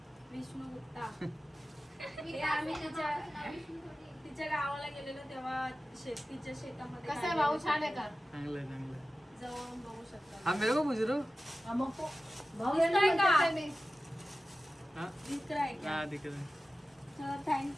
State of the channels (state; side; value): normal; both; correlation 0.95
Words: विष्णू गुप्ता. हे आम्ही तिच्या गावाला गेलेलो तेव्हा तिच्या शेतामध्ये कसं आहे भाऊ छान आहे का चांगलं आहे चांगलं आहे. जवळून बघू शकता. हा मेरे को पूछ रहे हो हा, मग तो भाऊ दिसतोय यांनी का? म्हणतात मी. हा दिसत आहे का? हा दिखत आहे.